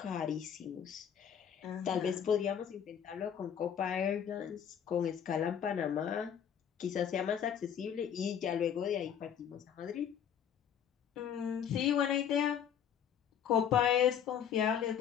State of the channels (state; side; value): quieter; right; 8.6 dB